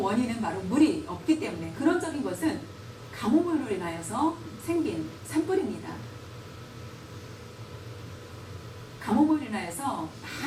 바로 물이 없기 때문에, 근원적인 것은 가뭄으로 인하여서 생긴 산불입니다. 가뭄으로 인하여서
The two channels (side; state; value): both; identical; correlation 1.00